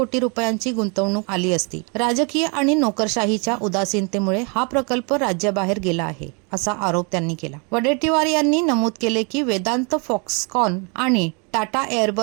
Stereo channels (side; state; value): left; quieter; 34.4 dB